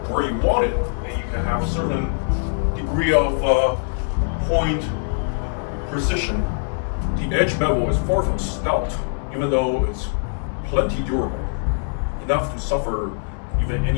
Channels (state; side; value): silent; right; 60 dB below the other